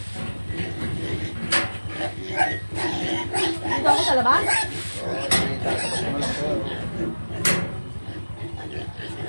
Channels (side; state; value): both; inverted; correlation -1.00